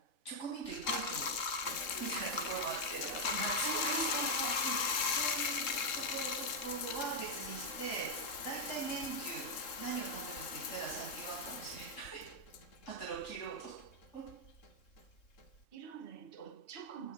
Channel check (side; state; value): right; late; 3.6 ms